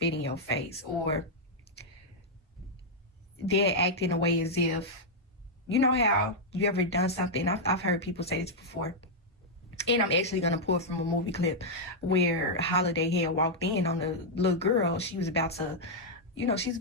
in your face, or they're acting a way as if, you know how you ever done something, I've heard people say this before, and I'm actually going to pull from a movie clip where Holiday had walked in on the little girl. She was about to, she's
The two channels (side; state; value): both; normal; correlation -0.04